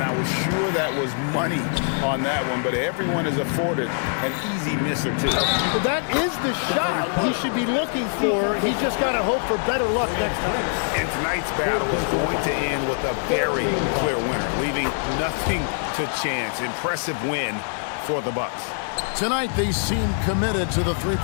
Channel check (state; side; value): silent; right; 60 dB below the other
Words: I was sure that was money on that one, but everyone is afforded an easy miss or two. But that is the shot he should be looking for. He's just got to hope for better luck next time. And tonight's battle is going to end with a very clear winner, leaving nothing to chance. Impressive win for the Bucks. Tonight they seem committed to the